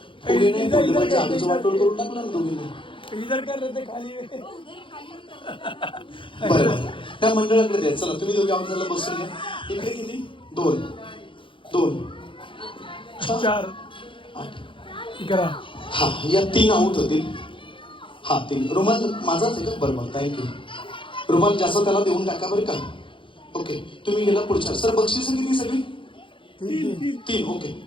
पुढे नाही फुडलं म्हणजे आमचं वाटोळ करून टाकलं ना दोघींनी बरं त्या मंडळाकडे द्या चला तुम्ही दोघे आमच्याला बसून घ्या इकडे किती 2 2 4 8 हा या 3 आऊट होतील हा 3 रुमाल माझाच आहे का बरोबर थँक्यू रुमाल जास्त त्याला देऊन टाका बरं का ओके तुम्ही गेला पुढच्या सर बक्षीस किती सगळी 3 ओके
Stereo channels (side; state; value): right; late; 0.25 ms